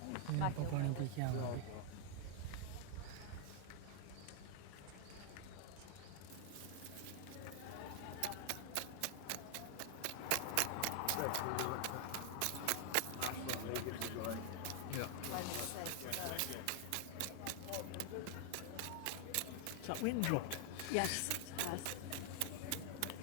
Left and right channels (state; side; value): different; both; correlation 0.00